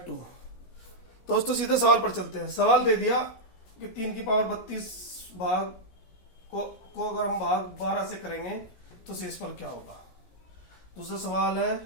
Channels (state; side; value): late; right; 16 ms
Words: 2। दोस्तों सीधे सवाल पर चलते हैं। सवाल दे दिया कि 3 की पावर 32 भाग को अगर हम भाग 12 से करेंगे तो शेषफल क्या होगा। दूसरा सवाल है